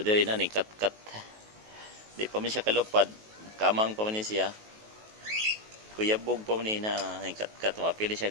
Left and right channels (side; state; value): left; late; 19 ms